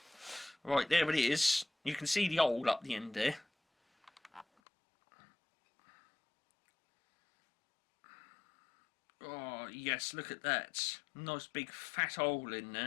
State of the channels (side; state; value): right; drops out; at 4.5 s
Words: Right, there it is. You can see the hole up the end there. Oh, yes, look at that. Nice big fat hole in